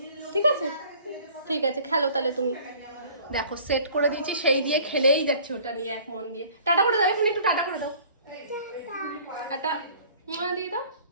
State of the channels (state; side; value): inverted; both; correlation -0.50